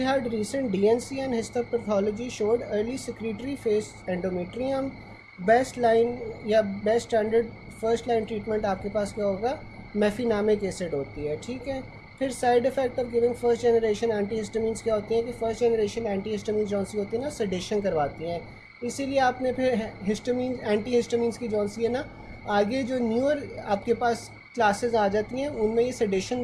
recent DNC and histopathology showed early secretory phase endometrium. Best line या best standard first line treatment आपके पास क्या होगा, मेफिनामिक acid होती है, ठीक है। फिर side effect of giving first generation antihistamines क्या होती हैं कि फर्स्ट जनरेशन एंटीहिस्टामिन्स जौन सी होती है ना सेडेशन करवाती हैं, इसीलिए आपने फिर हिस्टामिन एंटीहिस्टामिन्स की जौन सी है ना आगे जो न्यूअर आपके पास क्लासेस आ जाती हैं उनमें ये सेडेशन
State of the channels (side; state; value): both; identical; correlation 1.00